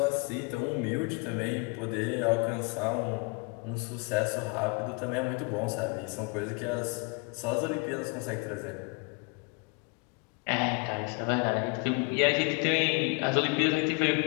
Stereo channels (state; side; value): quieter; right; 31.1 dB